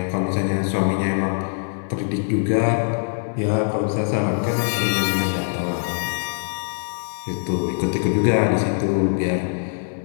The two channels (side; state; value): right; silent; digital silence